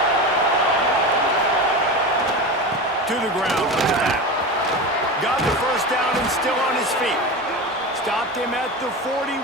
To the ground with that. Got the first down and still on his feet. Stopped him at the 41,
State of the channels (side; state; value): both; normal; correlation 0.25